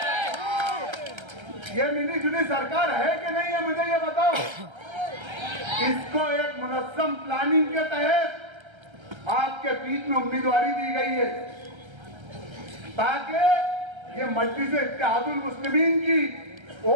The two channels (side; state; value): left; late; 1.3 ms